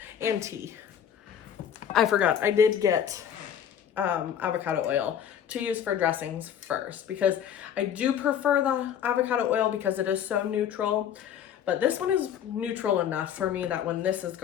and tea. I forgot, I did get avocado oil to use for dressings first because I do prefer the avocado oil because it is so neutral, but this one is neutral enough for me that when this is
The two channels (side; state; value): right; quieter; 9.1 dB